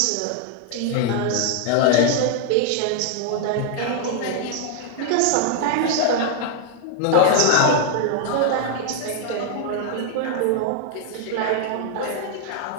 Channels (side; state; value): both; different; correlation 0.00